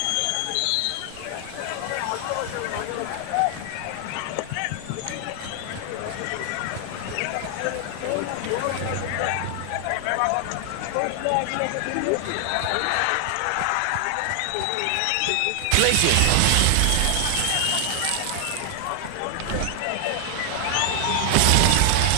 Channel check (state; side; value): different; both; correlation 0.00